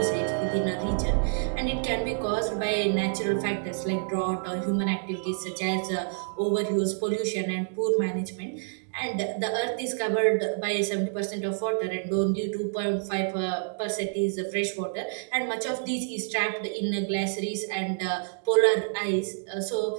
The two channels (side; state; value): left; silent; digital silence